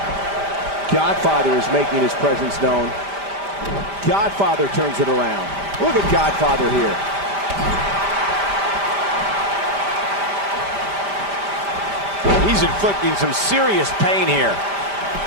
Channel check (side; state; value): left; late; 5.0 ms